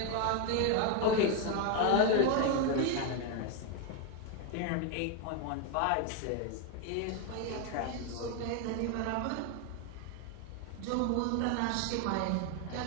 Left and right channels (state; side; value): different; both; correlation 0.01